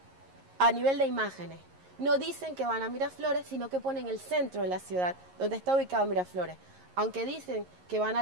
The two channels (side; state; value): left; late; 11 ms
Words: a nivel de imágenes. No dicen que van a Miraflores, sino que ponen el centro de la ciudad, donde está ubicado Miraflores. Aunque dicen que van a